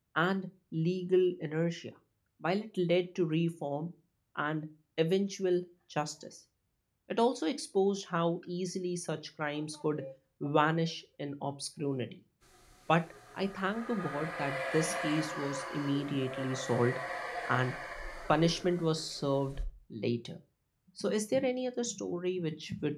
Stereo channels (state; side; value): identical; both; correlation 1.00